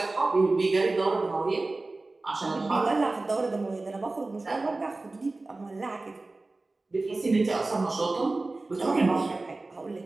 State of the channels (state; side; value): quieter; left; 3.2 dB